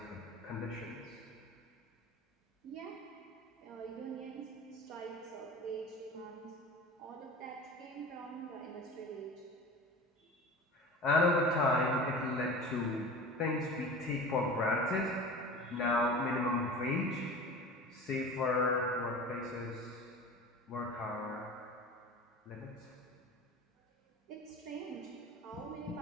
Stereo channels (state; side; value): normal; both; correlation 0.36